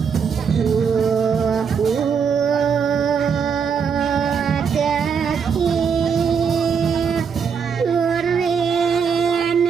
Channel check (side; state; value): left; quieter; 6.5 dB